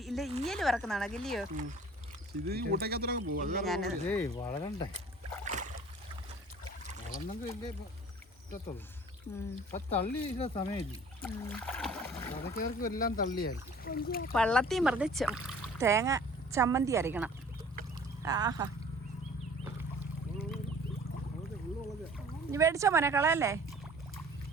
ഇല്ല ഈയല് പറക്കുന്നതാണോ? ഇല്ലയോ? വളരണ്ടേ? വളർന്നെങ്കിലേ പറ്റത്തുള്ളൂ. തള്ളി സമയമില്ല. അതൊക്കെ എല്ലാം തള്ളിയായിരിക്കും. വള്ളത്തിൽ മറിച്ച് തേങ്ങ ചമ്മന്തി അരയ്ക്കണം. ആഹാ ഇനി മേടിച്ചോ മോനെ, കളയല്ലേ?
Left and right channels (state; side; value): normal; both; correlation 0.49